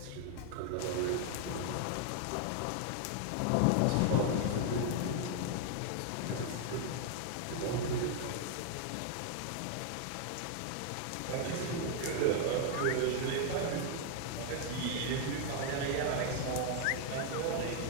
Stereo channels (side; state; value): both; different; correlation 0.00